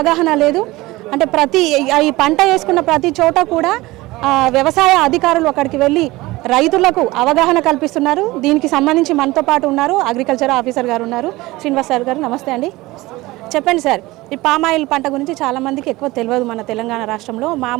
లేదు. అంటే ఈ పంట వేసుకున్న ప్రతి చోట కూడా వ్యవసాయ అధికారులు అక్కడికి వెళ్ళి రైతులకు అవగాహన కల్పిస్తున్నారు. దీనికి సంబంధించి మనతో పాటు ఉన్నారు అగ్రికల్చర్ ఆఫీసర్ గారు ఉన్నారు, శ్రీనివాస్ సార్ గారు. నమస్తే అండి. చెప్పండి సార్, ఈ పామాయిల్ పంట గురించి చాలామందికి ఎక్కువ తెలియదు. మన తెలంగాణ రాష్ట్రంలో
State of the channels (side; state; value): left; quieter; 19.9 dB